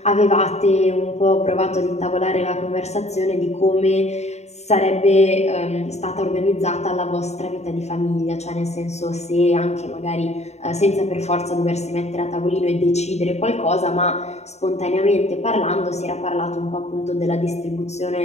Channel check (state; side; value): late; right; 0.32 ms